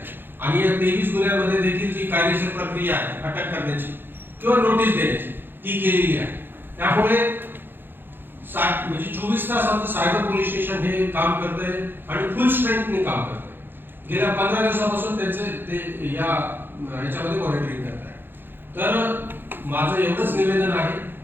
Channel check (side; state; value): left; late; 0.10 ms